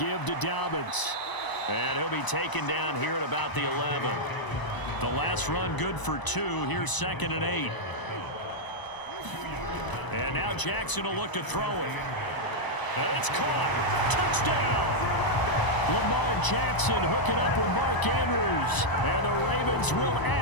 to Dobbins. And he'll be taken down here at about the 11. The last run good for 2. Here's 2nd and 8. And now Jackson will look to throw it. And it's caught. Touchdown. Lamar Jackson hooking up with Mark Andrews. And the Ravens will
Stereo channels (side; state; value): right; late; 1.0 ms